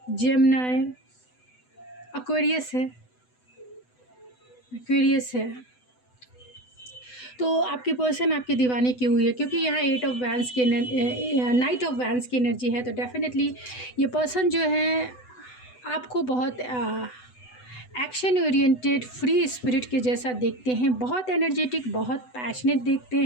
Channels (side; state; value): right; late; 8.0 ms